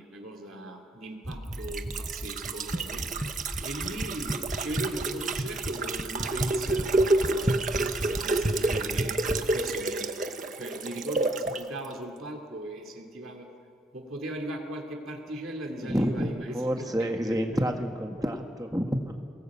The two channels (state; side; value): normal; both; correlation 0.72